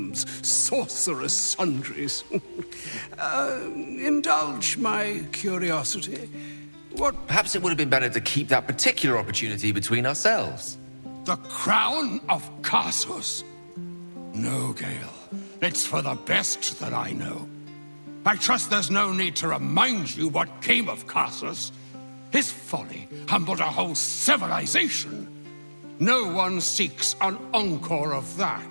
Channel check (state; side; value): inverted; both; correlation -1.00